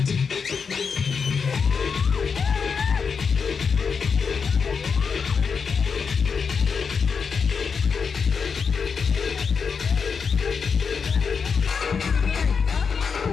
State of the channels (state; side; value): quieter; right; 5.8 dB